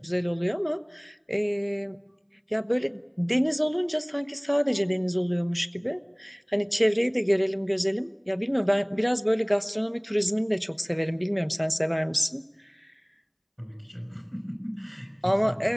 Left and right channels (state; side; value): identical; both; correlation 1.00